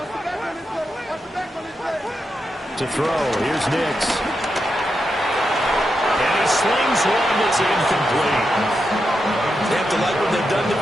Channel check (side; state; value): both; normal; correlation 0.86